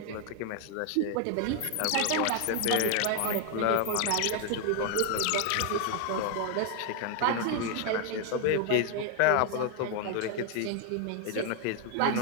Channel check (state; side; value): different; both; correlation 0.00